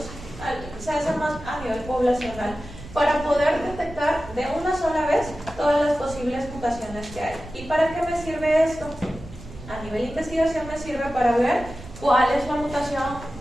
se hace más a nivel poblacional, para poder detectar de una sola vez todas las posibles mutaciones que hay. ¿Y para qué me sirve esto?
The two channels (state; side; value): noise; right; rumble, 15 dB below the sound